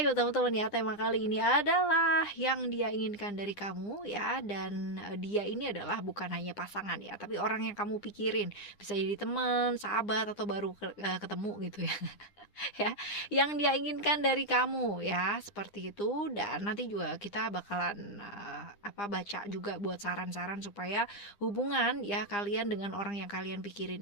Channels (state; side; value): late; right; 9.8 ms